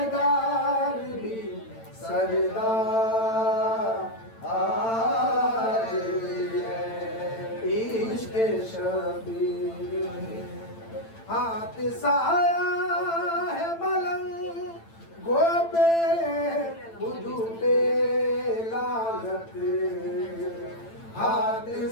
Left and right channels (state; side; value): late; right; 8.9 ms